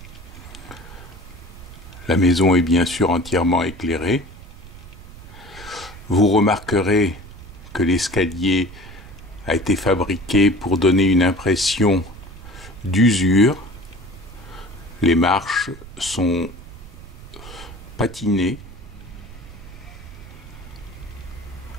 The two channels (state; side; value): noise; right; rumble, 16 dB below the sound